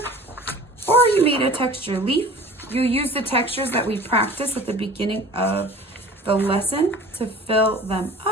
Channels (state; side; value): normal; both; correlation 0.43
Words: or you made a texture leaf. You used the textures that we practiced at the beginning of the lesson to fill them